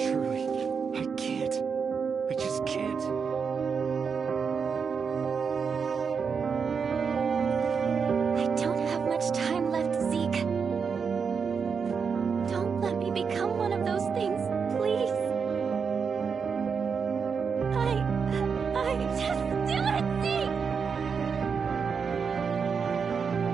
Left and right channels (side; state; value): left; quieter; 6.0 dB